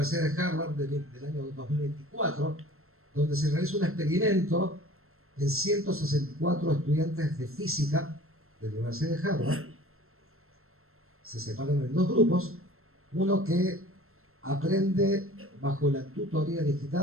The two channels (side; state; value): left; late; 0.62 ms